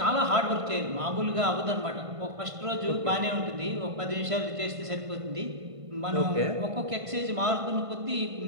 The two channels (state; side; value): late; left; 1.5 ms